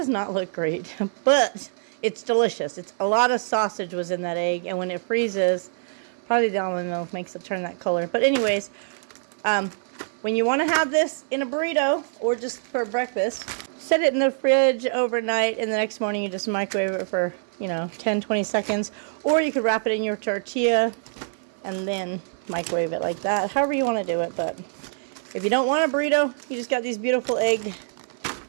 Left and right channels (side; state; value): left; silent; 56 dB below the other